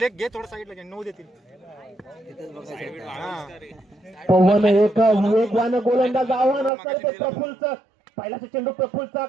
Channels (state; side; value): drops out; left; at 6.7 s